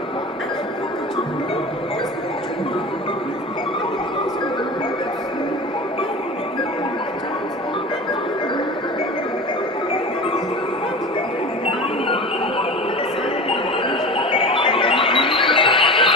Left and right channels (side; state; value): both; normal; correlation 0.33